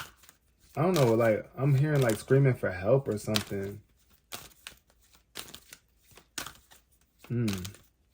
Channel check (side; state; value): both; identical; correlation 1.00